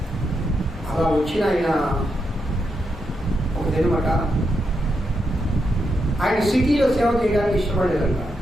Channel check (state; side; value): normal; both; correlation 0.83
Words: అలా వచ్చిన ఆయన ఒక దినమాట ఆయన సిటీలో సేవ చేయడానికి ఇష్టపడేదంట.